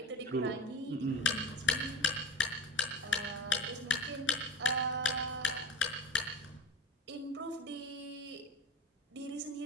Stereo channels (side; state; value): both; normal; correlation 0.28